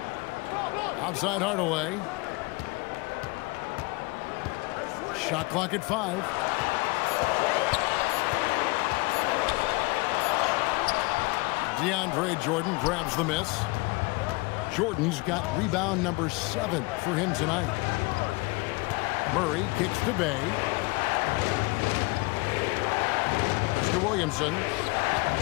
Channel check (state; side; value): quieter; right; 25.7 dB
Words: Outside Hardaway. Shot clock at 5. DeAndre Jordan grabs the miss. Jordan's got rebound number 7 for him tonight. Murray kicks to Bay. Mr. Williamson